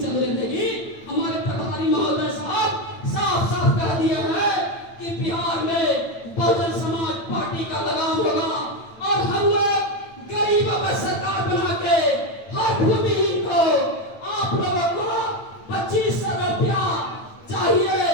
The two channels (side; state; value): right; late; 9.0 ms